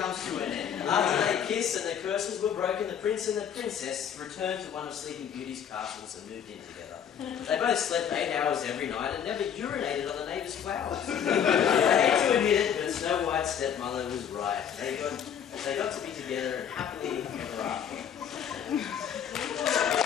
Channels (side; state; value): right; quieter; 8.5 dB